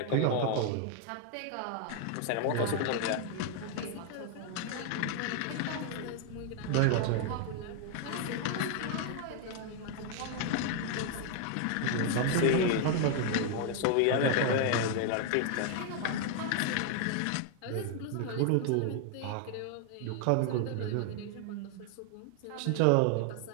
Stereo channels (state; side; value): different; both; correlation 0.00